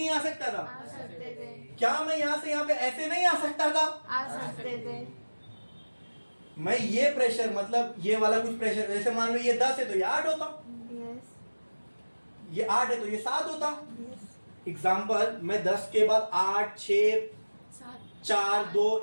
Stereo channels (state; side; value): inverted; both; correlation -1.00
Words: आ सकता था? आ सकते थे क्या मैं यहाँ से यहाँ पे ऐसे नहीं आ सकता था? आ सकते थे मैं ये प्रेशर, मतलब ये वाला कुछ प्रेशर, जैसे मान लो ये 10 है तो ये 8 होता, यस ये 8 है तो ये 7 होता। यस एग्जाम्पल, मैं 10 के बाद 8, 6, 4, 2,